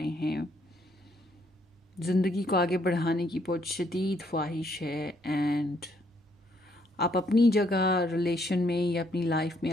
हैं, ज़िंदगी को आगे बढ़ाने की बहुत शदीद ख्वाहिश है, एंड आप अपनी जगह रिलेशन में या अपनी लाइफ में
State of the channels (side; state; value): both; normal; correlation 0.70